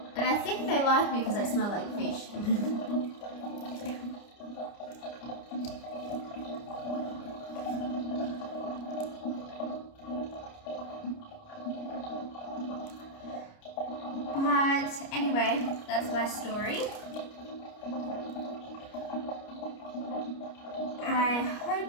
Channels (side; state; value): right; late; 29 ms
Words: And I think they like me because I smell like fish. But anyway, that's my story. I